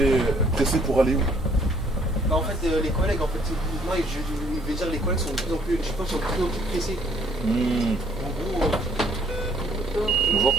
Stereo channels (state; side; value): normal; both; correlation 0.63